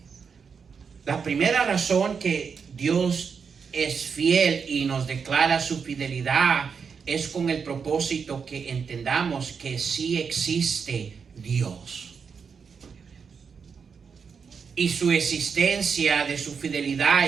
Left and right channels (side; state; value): left; quieter; 6.0 dB